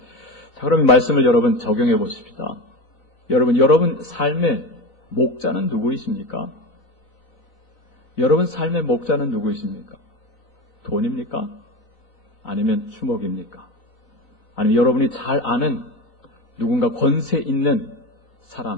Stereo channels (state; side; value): late; right; 3.3 ms